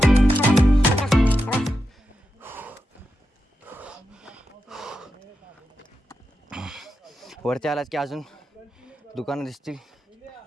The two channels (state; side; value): normal; both; correlation 0.88